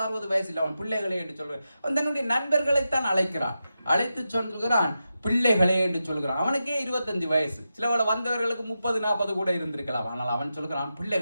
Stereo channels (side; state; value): both; inverted; correlation -0.89